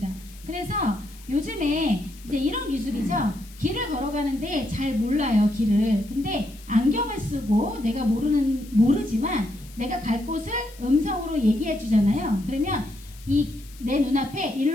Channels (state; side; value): noise; left; hiss, 22 dB below the sound